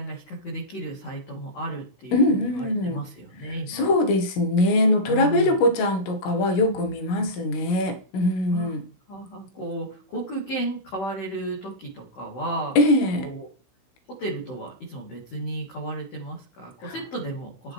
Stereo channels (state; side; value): late; right; 16 ms